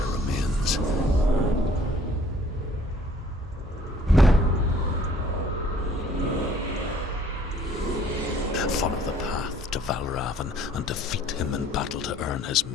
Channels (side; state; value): both; normal; correlation 0.57